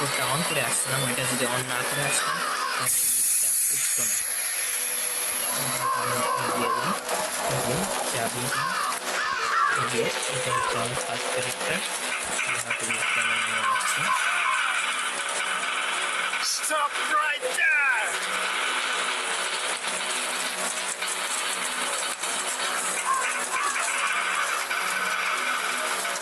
অন করে আসছিলাম, ওইটা যদি অন না করে আসতাম তাহলে লিফটটা উঠতো না। দিয়ে দিই চাবি দিয়ে, এটা হচ্ছে আমার first character. Stop right there.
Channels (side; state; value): both; identical; correlation 1.00